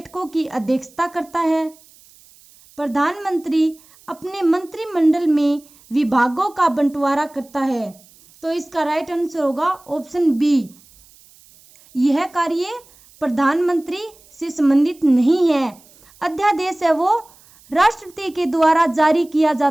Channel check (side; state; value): right; noise; hiss, 27 dB below the sound